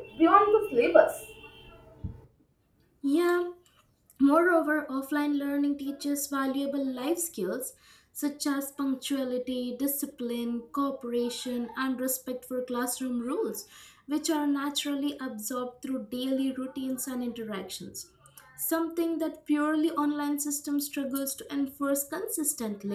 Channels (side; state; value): both; identical; correlation 1.00